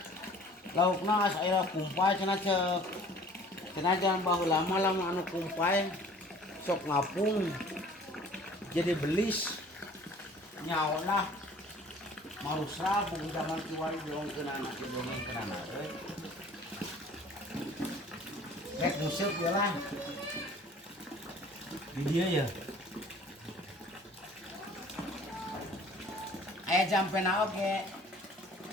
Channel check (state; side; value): normal; both; correlation 0.50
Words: Laukna asa aya kumpay cenah ceuk. Cenah jangan baheula mah lamun anu kumpay sok ngapung. Jadi belis nyaolah marusra bung zaman kiwari diongkeun anak didongengkeun anak euy. Rek museup we lah. Di dieu ya. Aya jampena oge.